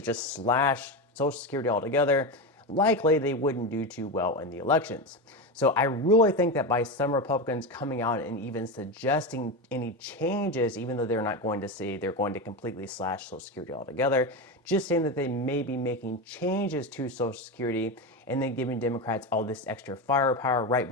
slash Social Security altogether, likely they wouldn't do too well in the elections. So I really think that by some Republicans coming out and even suggesting any changes, even though they're not going to say they're going to completely slash Social Security altogether, just saying that they may be making changes to Social Security and then giving Democrats all this extra firepower right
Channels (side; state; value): both; normal; correlation 0.17